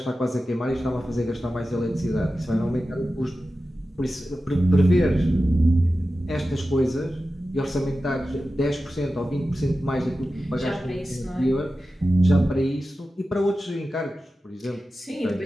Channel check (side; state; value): both; normal; correlation 0.94